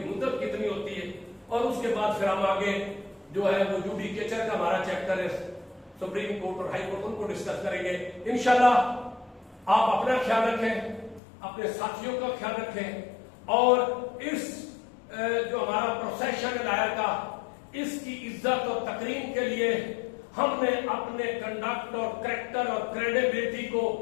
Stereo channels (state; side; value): drops out; right; at 11.2 s